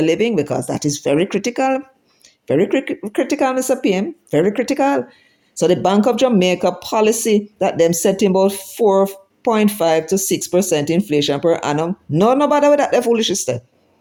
living, because that is very critical. Very critical, Mr. PM. Very critical. So the Bank of Jamaica policy that them setting about 4.5 to 6% inflation per annum. No bother with that, they're foolish sister.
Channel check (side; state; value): both; identical; correlation 1.00